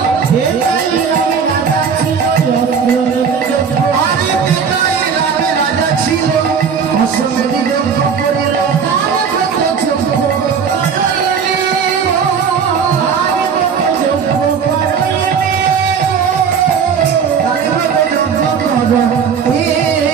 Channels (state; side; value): quieter; left; 6.5 dB